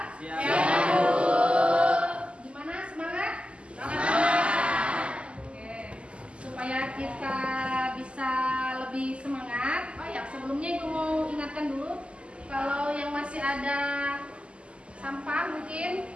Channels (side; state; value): left; late; 0.054 ms